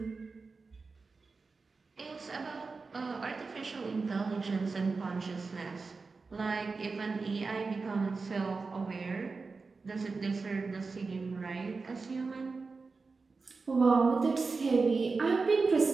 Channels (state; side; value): quieter; left; 4.3 dB